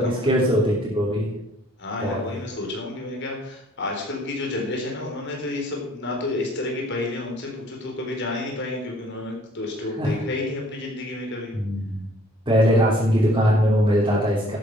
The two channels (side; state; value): both; normal; correlation 0.58